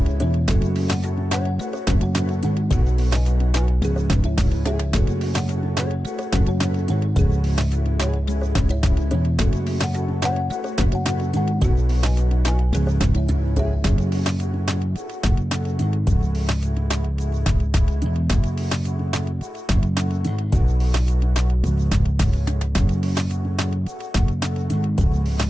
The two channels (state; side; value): normal; both; correlation 0.94